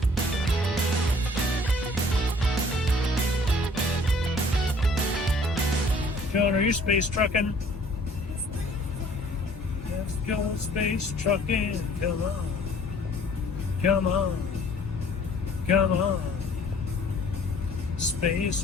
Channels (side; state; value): both; normal; correlation 0.55